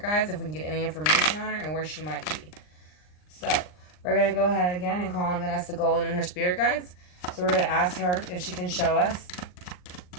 guides, if we can get any information on her and where she might be. So we're going to go ahead again and call on Vanessa Guillen and her spirit guides. So we're going to ask her if she can show us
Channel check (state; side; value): late; right; 39 ms